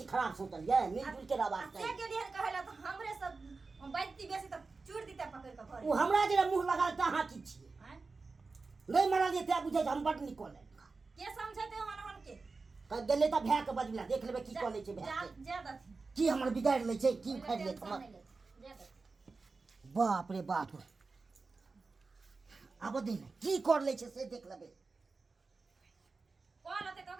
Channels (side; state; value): left; quieter; 4.1 dB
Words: खराब सोचलिए मिलजुल के रहबाक से चाही गेलिए कहला त हमरे सब बैठती बेसी त चूड़ दीते पकड़ के घरे उ हमरा जे मुंह लगा त अहाँ की छिए हैं? नै मारलिए त बुझै हम बड निकल के समझते हन के कह गेले त भै के बजला देख लेबै की कऽ लै छै भै के ज्यादा थी की हमर बिगाड़ लै छै की उखाड़ लै हमर बाप रे बाप आब दिन की कर लै छै से देख लेबै कॉल होते